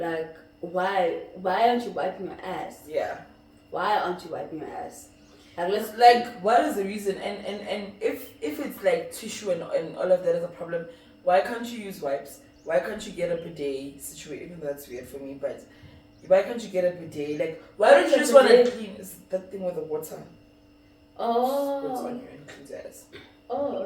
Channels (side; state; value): both; identical; correlation 1.00